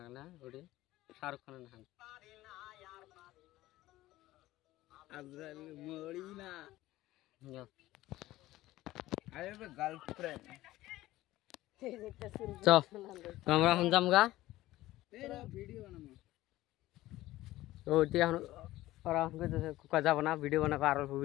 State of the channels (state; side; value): quieter; right; 16.5 dB